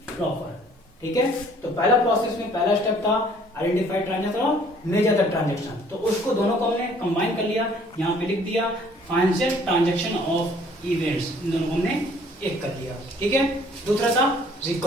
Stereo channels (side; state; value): both; normal; correlation 0.57